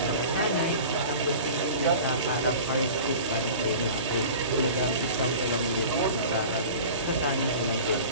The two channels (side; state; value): both; inverted; correlation -0.39